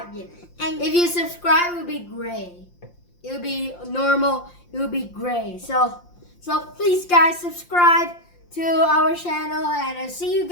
yet. And If you subscribe, it will be gray. It will be normal. It will be gray. So please, guys, subscribe to our channel, and I'll see you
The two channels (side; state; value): right; late; 5.7 ms